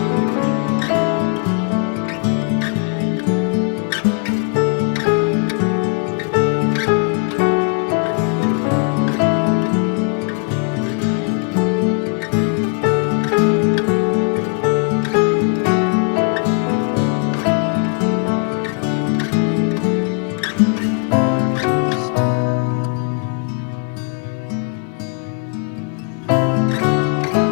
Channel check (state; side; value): quieter; right; 39.2 dB